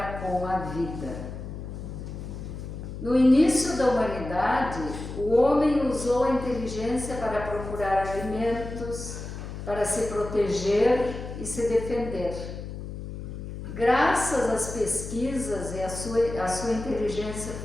com a vida. No início da humanidade, o homem usou a inteligência para procurar alimentos, para se proteger e se defender. Graças às pesquisas, a sua inteligência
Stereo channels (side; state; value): left; noise; hum, 9 dB below the sound